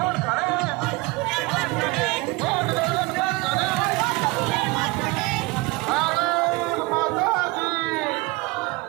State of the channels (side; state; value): left; quieter; 23.8 dB